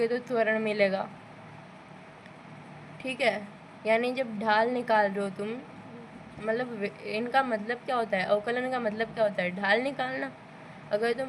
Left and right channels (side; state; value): both; identical; correlation 1.00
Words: तो त्वरण मिलेगा। ठीक है, यानी जब ढाल निकाल रहे हो तुम, मतलब इनका मतलब क्या होता है? अवकलन का मतलब क्या होता है? ढाल निकालना। अगर